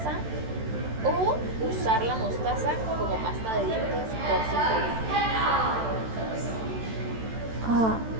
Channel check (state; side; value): late; left; 13 ms